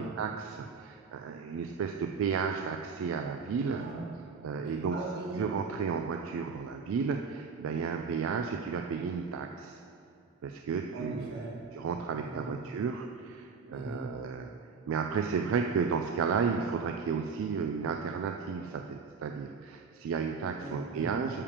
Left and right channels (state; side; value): quieter; left; 5.4 dB